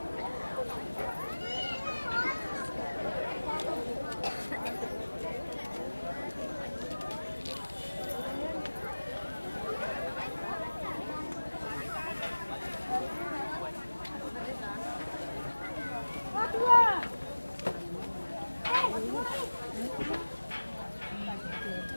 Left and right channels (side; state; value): both; inverted; correlation -1.00